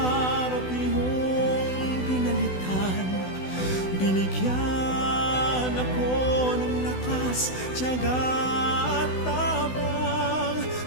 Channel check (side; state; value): right; late; 16 ms